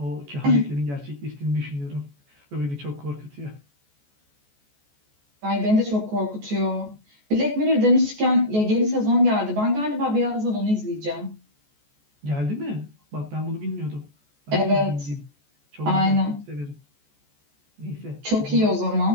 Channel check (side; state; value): left; late; 14 ms